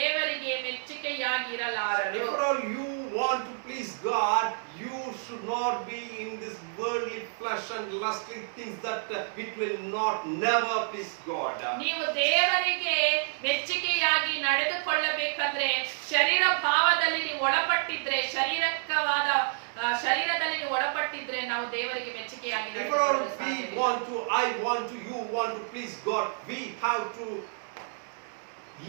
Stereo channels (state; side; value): silent; left; digital silence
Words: ಮೆಚ್ಚುಗೆಯಾಗಿ ಇರಲಾರರು. If all you want to please God, you should not be in this worldly flesh and lustly things that it will never please God. ನೀವು ದೇವರಿಗೆ ಮೆಚ್ಚುಗೆಯಾಗಿ ನಡೆದುಕೊಳ್ಳಬೇಕಂದ್ರೆ ಶರೀರ ಭಾವದಲ್ಲಿ ನೀವು ಒಳಪಟ್ಟಿದ್ರೆ, ಶಾರೀರಿಕವಾದ ಶರೀರದಲ್ಲಿ ನೀವು ಒಳಪಟ್ಟಿದ್ರೆ ನಾವು ದೇವರಿಗೆ ಮೆಚ್ಚುಗೆಯಾಗಿ If ನಡೆದುಕೊಳ್ಳಲು we ಸಾಧ್ಯವಿಲ್ಲ. want to, I want to, you want to please God, we have to